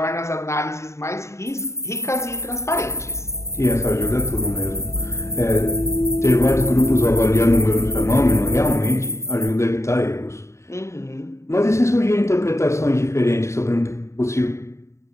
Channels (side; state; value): right; late; 0.14 ms